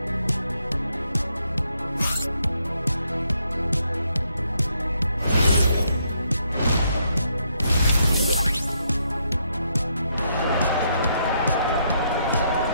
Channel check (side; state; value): both; inverted; correlation -0.75